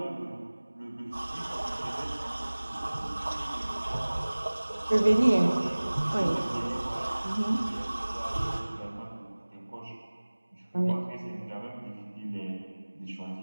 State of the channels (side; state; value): both; inverted; correlation -1.00